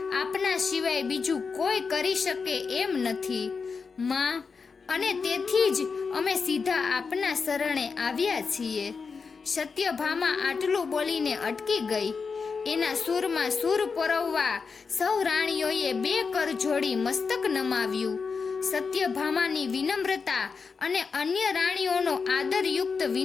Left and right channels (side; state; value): right; quieter; 5.1 dB